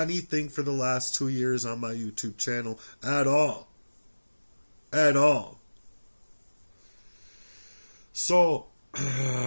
for the last 2 years on my YouTube channel at all. At all. So,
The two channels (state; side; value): inverted; both; correlation -1.00